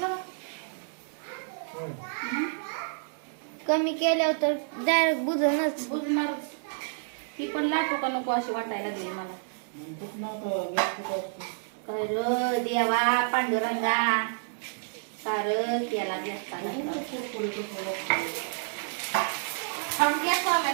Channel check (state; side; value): silent; left; digital silence